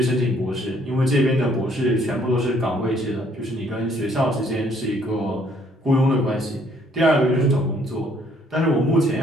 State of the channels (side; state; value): both; normal; correlation 0.64